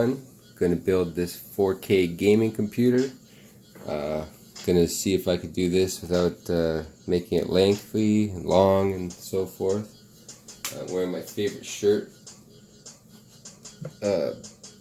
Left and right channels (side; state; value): both; identical; correlation 1.00